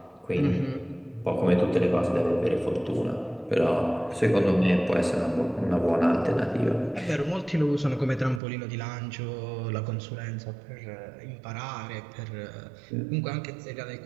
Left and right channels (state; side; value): drops out; left; at 8.4 s